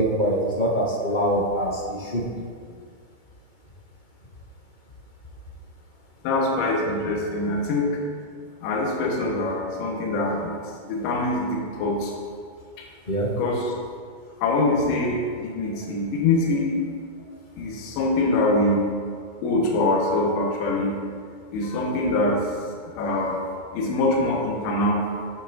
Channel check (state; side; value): late; right; 2.2 ms